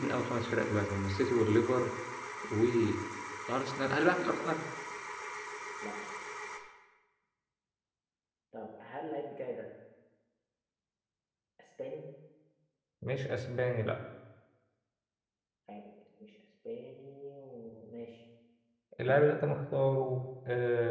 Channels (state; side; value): identical; both; correlation 1.00